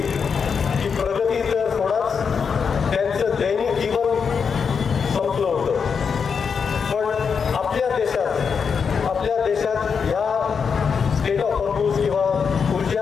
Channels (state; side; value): quieter; right; 6.1 dB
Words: की प्रगती तर सोडाच, त्यांचं दैनिक जीवन संपलं होतं. पण आपल्या देशात ह्या स्टेट ऑफ हॉर्मुझ किंवा